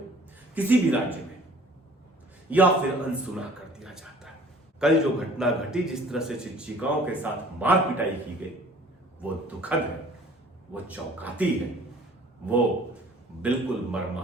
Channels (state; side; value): normal; both; correlation 0.51